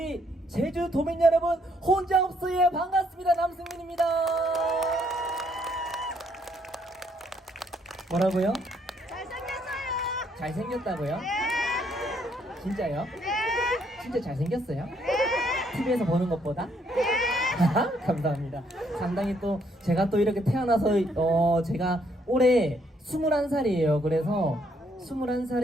제주 도민 여러분, 혼자 없어요. 반갑습니다. 남승민입니다. 뭐라고요? 잘생겼어요. 잘생겼다고요? 네. 진짜요? 네. 진짜 잘생겼어요? 네. TV에서 보는 것보다? 감사합니다. 상당히 또 제가 또 이렇게 태어나서 제가 올해 21살이에요. 그래서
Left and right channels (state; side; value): normal; both; correlation 0.70